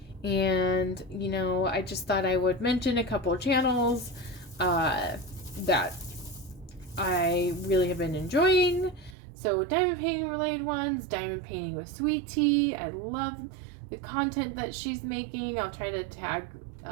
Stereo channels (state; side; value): drops out; left; at 9.2 s